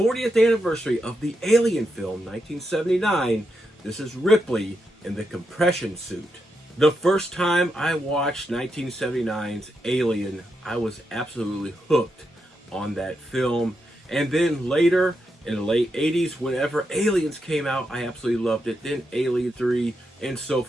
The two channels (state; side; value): normal; both; correlation 0.84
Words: anniversary of the Alien film, 1979. This is Ripley in the compression suit. The first time I watched 1979's Alien, I was absolutely hooked on that film, and then later, in the late 80s, whenever Aliens came out, I absolutely loved it. Then Alien 3, and so